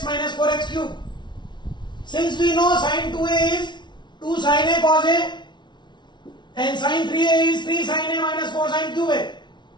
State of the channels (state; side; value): late; right; 0.22 ms